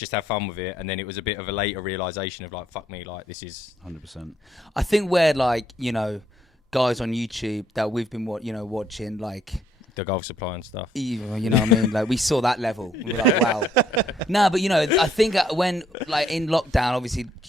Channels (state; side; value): normal; both; correlation 0.69